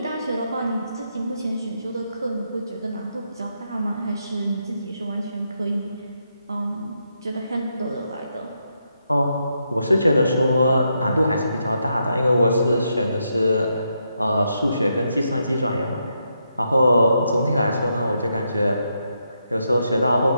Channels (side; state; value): both; inverted; correlation -0.81